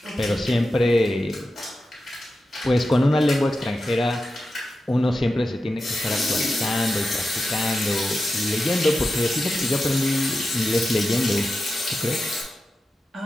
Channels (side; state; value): both; normal; correlation 0.91